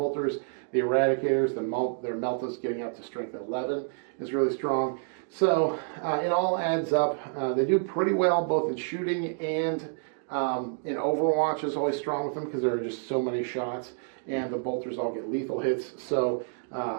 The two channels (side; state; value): left; silent; digital silence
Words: The eradicators, their meltas getting up to strength 11 is really strong. So it all adds up. They do pretty well both in shooting and in Overwatch is always strong with them because there are just so many shots, and the bolters all get lethal hits. So